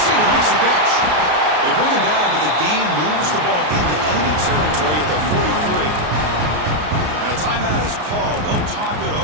makes the catch. They bring him down, but the gain moves the ball into enemy territory at the 43. And a timeout is called. They'll talk it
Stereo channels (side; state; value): left; late; 33 ms